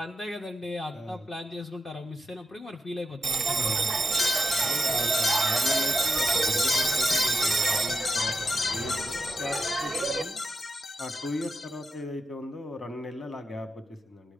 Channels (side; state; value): both; normal; correlation 0.87